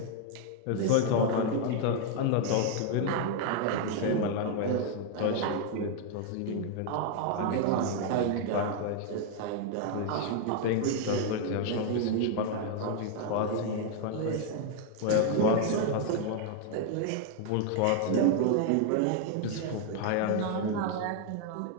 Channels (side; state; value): both; different; correlation 0.00